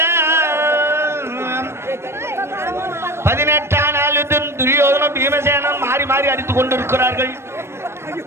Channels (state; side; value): late; left; 0.12 ms